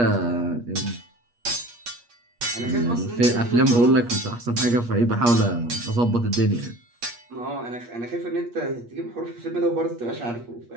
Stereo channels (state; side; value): late; left; 8.4 ms